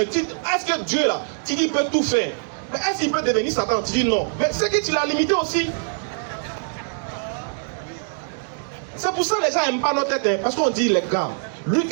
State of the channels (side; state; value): left; silent; 63 dB below the other